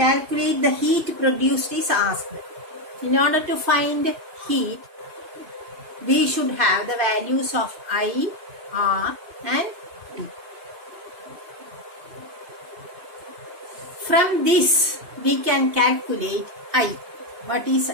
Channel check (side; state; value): left; late; 2.5 ms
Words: the heat produced is asked. In order to find heat, we should have the values of I, R and T. From this, we can calculate I. What is